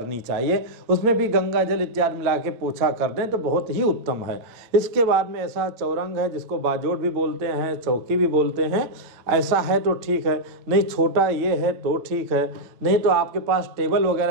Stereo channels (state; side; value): late; left; 8.9 ms